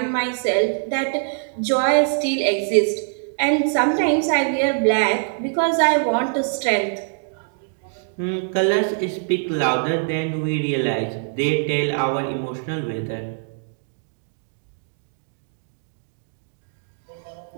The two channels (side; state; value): left; silent; digital silence